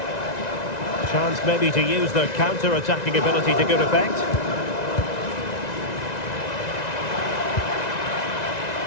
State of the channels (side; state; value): right; late; 1.9 ms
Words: Chance maybe to use their counter-attacking ability to good effect.